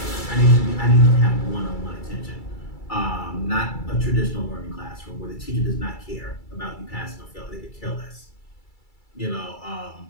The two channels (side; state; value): right; late; 2.3 ms